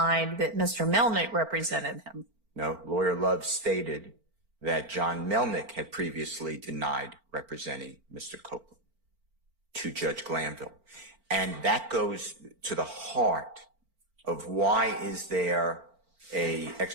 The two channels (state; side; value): late; left; 4.4 ms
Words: that Mr. Melnick represented him. No, Lawyer Love stated that John Melnick had previously denied representing Mr. Copeland to Judge Glanville. And that goes to the heart of why is there a ex